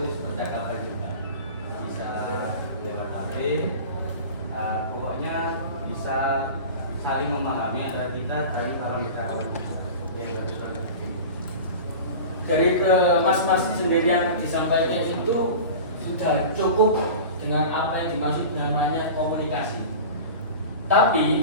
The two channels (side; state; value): both; inverted; correlation -0.34